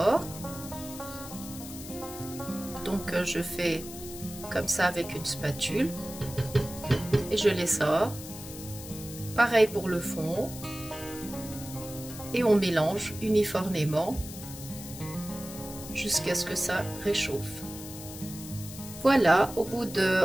Donc, je fais comme ça avec une spatule et je les sors. Pareil pour le fond. Et on mélange uniformément jusqu'à ce que ça réchauffe. Voilà, au bout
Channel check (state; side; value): noise; left; hiss, 13 dB below the sound